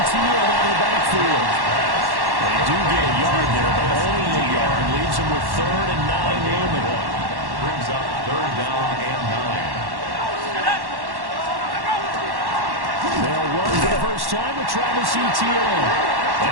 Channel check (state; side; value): late; left; 1.1 ms